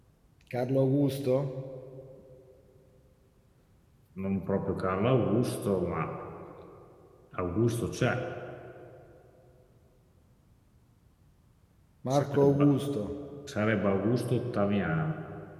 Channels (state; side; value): identical; both; correlation 1.00